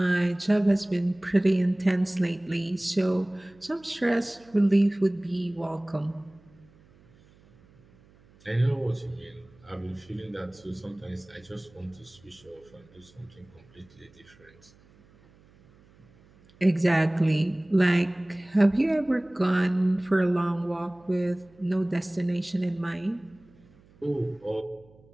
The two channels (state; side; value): noise; right; hum, 28 dB below the sound